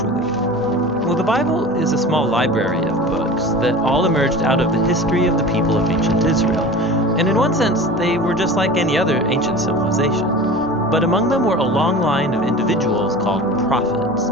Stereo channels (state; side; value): normal; both; correlation 0.36